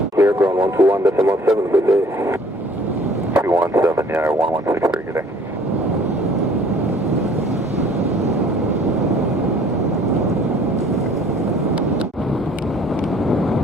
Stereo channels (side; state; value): both; normal; correlation 0.54